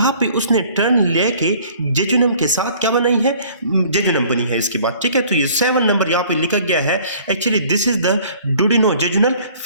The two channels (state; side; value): inverted; both; correlation -0.53